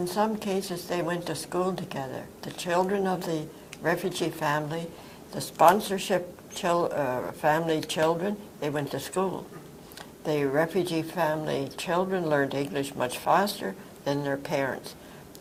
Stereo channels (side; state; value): both; identical; correlation 1.00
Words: some cases they went to school together. The children of the refugee family, the sponsorship family children, they went to school. The refugee family children learned English much faster than their parents.